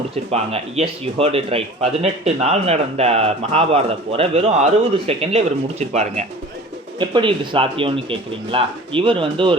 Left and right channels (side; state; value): both; normal; correlation 0.42